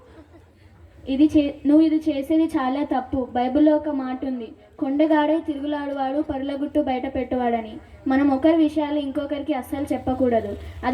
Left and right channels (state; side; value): identical; both; correlation 1.00